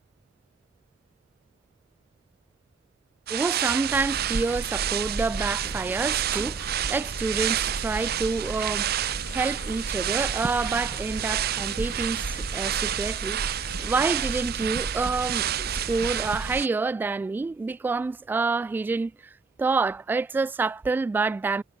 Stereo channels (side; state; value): left; quieter; 5.0 dB